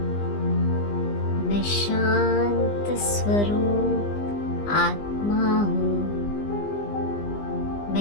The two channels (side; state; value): right; late; 20 ms